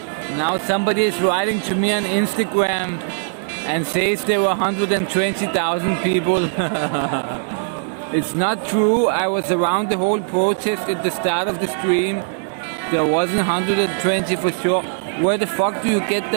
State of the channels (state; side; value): silent; left; digital silence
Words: Now somebody is writing to me on Instagram and says there were 120,000 people. It's not true. I was around the whole protest at the start of the stream. There wasn't 120 for sure. Where the fuck do you get